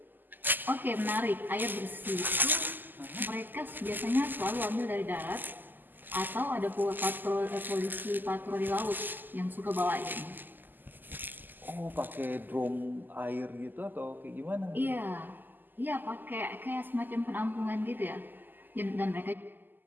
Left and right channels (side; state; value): left; late; 0.089 ms